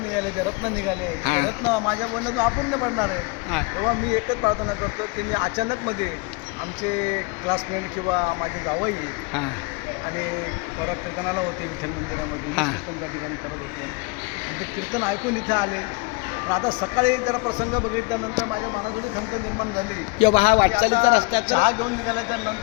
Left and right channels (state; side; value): quieter; right; 29.2 dB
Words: निघाले, ते रत्न निघाले, ते रत्न माझ्या मनातून अपूर्ण पडणार आहे. हा. तेव्हा मी एकच प्रार्थना करतो की मी अचानकमध्ये आमचे क्लासमेट किंवा माझे जावई हां आणि परत कीर्तनाला होते विठ्ठल मंदिरामध्ये, हा. कीर्तन त्या ठिकाणी करत होते आणि ते कीर्तन ऐकून इथे आले. पण आता सकाळी जरा प्रसंग बघितल्यानंतर माझ्या मनातून खंत निर्माण झाली. किंवा हा वाटचालीचा रस्ता चहा घेऊन निघाल्याच्या